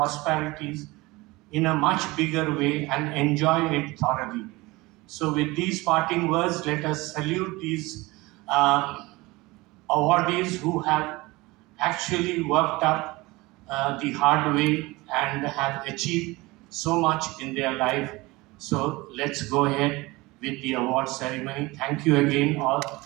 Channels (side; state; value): left; quieter; 22.0 dB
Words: in a much bigger way and enjoy it thoroughly. So with these parting words, let us salute these awardees who have actually worked up the hard way and have achieved so much in their life. So let's go ahead with the award ceremony. Thank you again,